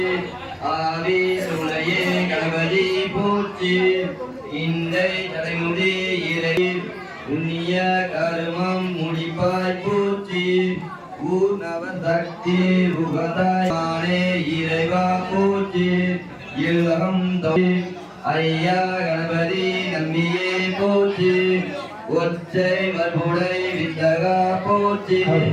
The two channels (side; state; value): both; identical; correlation 1.00